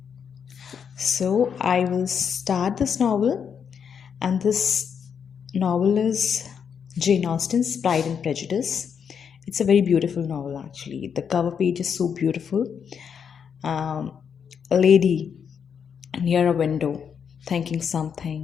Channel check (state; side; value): quieter; right; 7.2 dB